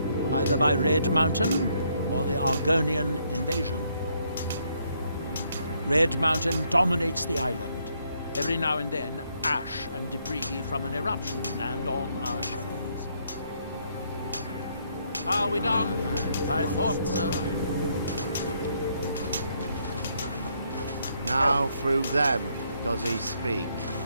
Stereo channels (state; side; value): inverted; both; correlation -0.72